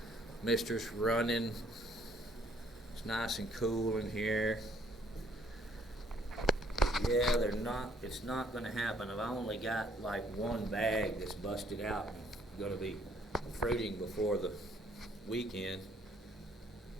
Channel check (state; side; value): normal; both; correlation 0.64